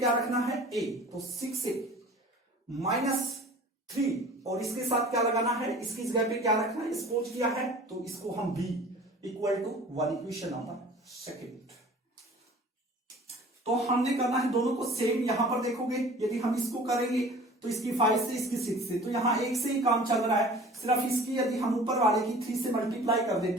रखना है, a, तो 6a -3, और इसके साथ क्या लगाना है, इसकी जगह पे क्या रखना है, सपोज किया है, तो इसको हम b equal to 1, equation number second. तो हमने करना है दोनों को सेम। यहां पर देखोगे, यदि हम इसको करेंगे तो इसकी 5 से इसकी 6 से, तो यहां एक से ही काम चल रहा है। सिर्फ इसकी यदि हम ऊपर वाले की 3 से मल्टीप्लाई कर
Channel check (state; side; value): normal; both; correlation 0.45